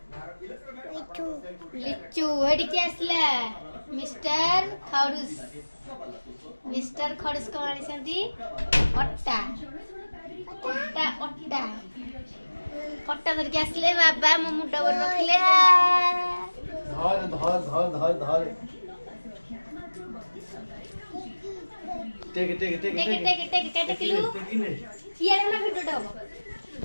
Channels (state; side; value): inverted; both; correlation -1.00